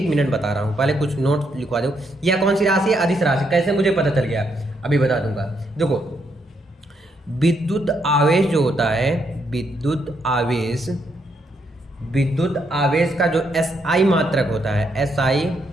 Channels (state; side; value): normal; both; correlation 0.76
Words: मिनट बता रहा हूँ, पहले कुछ नोट लिखवा दो। यह कौन सी राशि है, अदिश राशि। कैसे मुझे पता चल गया, अभी बता दूंगा। देखो विद्युत आवेश जो होता है, विद्युत आवेश का जो SI मात्रक होता है, SI